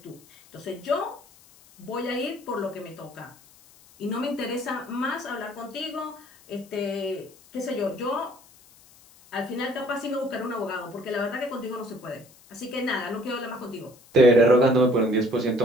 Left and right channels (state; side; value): noise; left; hiss, 25 dB below the sound